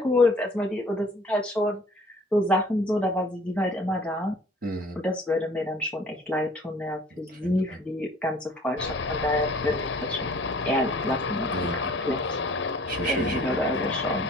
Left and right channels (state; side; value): normal; both; correlation 0.52